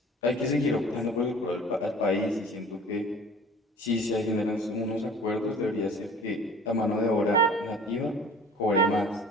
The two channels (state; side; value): normal; both; correlation 0.46